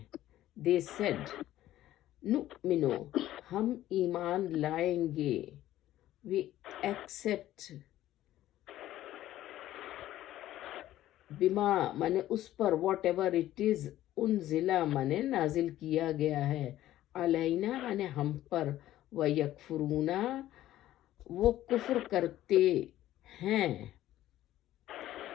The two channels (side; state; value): right; quieter; 13.9 dB